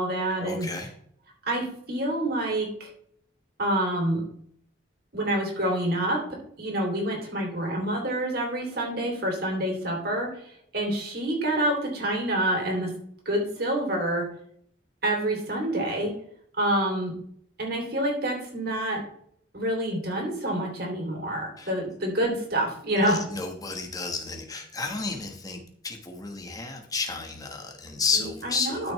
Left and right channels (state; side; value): normal; both; correlation 0.14